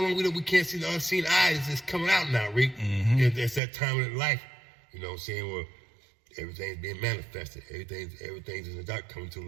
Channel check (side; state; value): left; drops out; at 3.6 s